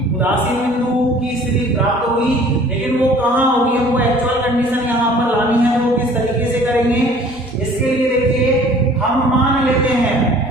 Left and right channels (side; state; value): both; normal; correlation 0.51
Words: उदासीन बिंदु की स्थिति प्राप्त होगी, लेकिन वो कहाँ होगी, हमको एक्चुअल कंडीशन यहाँ पर लानी है। वो किस तरीके से करेंगे, इसके लिए देखिए हम मान लेते हैं